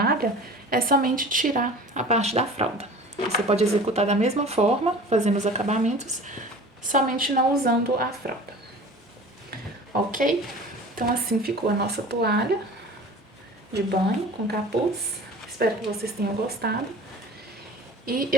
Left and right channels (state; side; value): normal; both; correlation 0.41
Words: é somente tirar a parte da fralda. Você pode executar da mesma forma, fazendo os acabamentos, somente não usando a fralda. Ok? Então, assim ficou a nossa toalha de banho com capuz. Espero que vocês tenham gostado. E